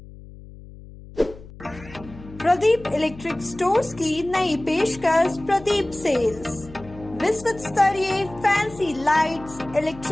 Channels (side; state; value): left; noise; hum, 18 dB below the sound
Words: प्रदीप इलेक्ट्रिक स्टोर्स की नई पेशकश प्रदीप सेल्स। विश्व स्तरीय fancy lights,